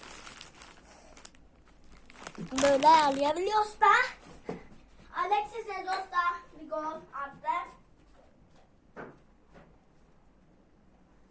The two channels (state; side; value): identical; both; correlation 1.00